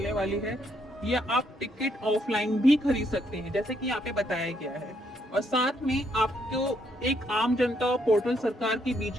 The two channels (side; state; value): both; normal; correlation 0.73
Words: वाली है, या आप टिकट ऑफलाइन भी खरीद सकते हैं जैसे कि यहाँ पे बताया गया है। और साथ में आपको एक आम जनता और पोर्टल सरकार के बीच